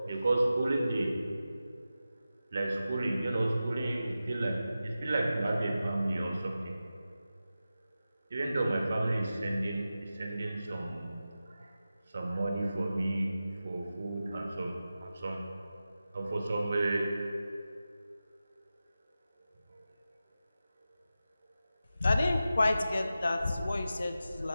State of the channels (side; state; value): both; inverted; correlation -0.93